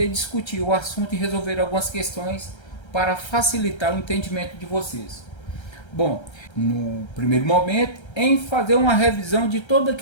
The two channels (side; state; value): right; late; 1.3 ms